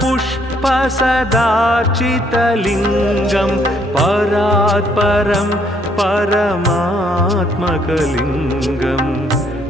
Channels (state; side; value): normal; both; correlation 0.67